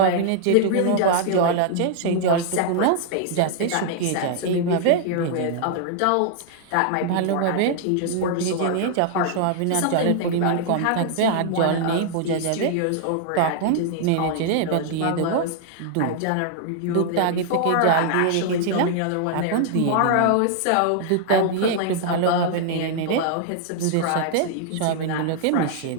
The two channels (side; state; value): both; different; correlation -0.01